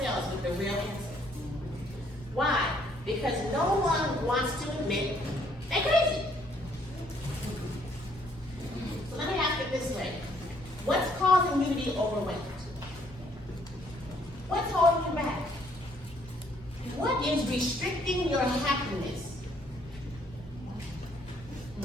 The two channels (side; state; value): both; normal; correlation 0.66